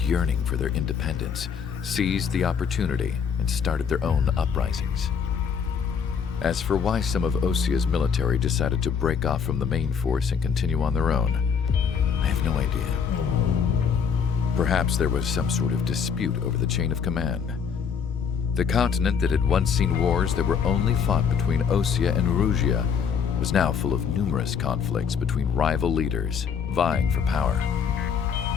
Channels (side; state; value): right; quieter; 6.8 dB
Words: for their independence seized the opportunity and started their own uprisings. As for why some of Osea's military decided to break off from the main force and continue on their own, I have no idea. Perhaps there was some sort of dispute over the chain of command. The continent that had once seen wars that were only fought between Osea and Erusia was now full of numerous conflicts between rival leaders vying for power.